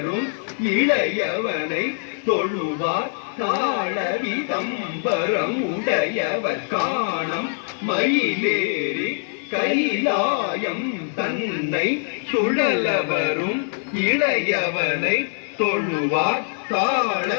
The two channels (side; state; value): right; silent; 56 dB below the other